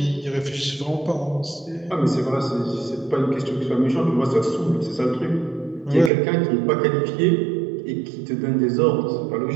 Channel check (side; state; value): left; drops out; at 6.1 s